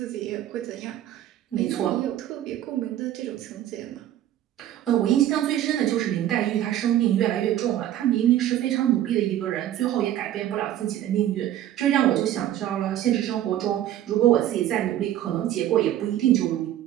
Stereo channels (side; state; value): left; quieter; 12.2 dB